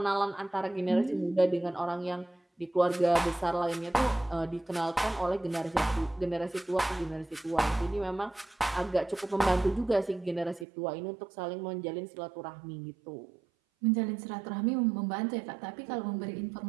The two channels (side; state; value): left; drops out; at 10.7 s